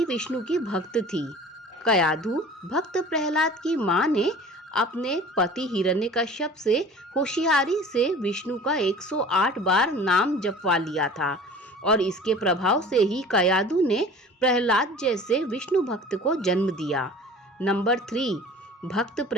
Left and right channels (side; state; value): both; normal; correlation 0.43